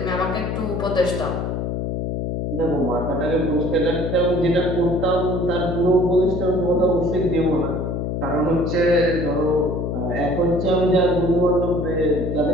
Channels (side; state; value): left; noise; hum, 2 dB below the sound